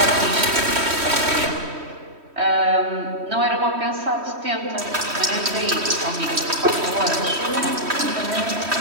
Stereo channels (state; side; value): late; left; 3.1 ms